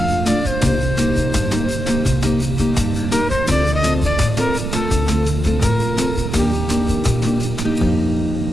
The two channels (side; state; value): right; noise; rumble, 5 dB below the sound